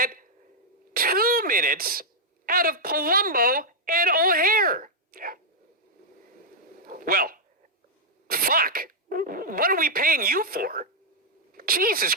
2 minutes out of Palumbo and O'Hare. Yeah. Well, fuck. What are we paying you for? Jesus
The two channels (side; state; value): both; normal; correlation -0.05